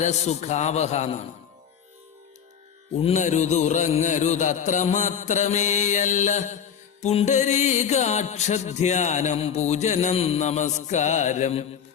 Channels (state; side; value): quieter; right; 7.9 dB